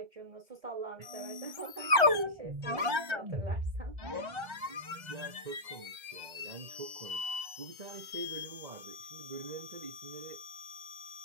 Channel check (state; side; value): late; left; 2.0 ms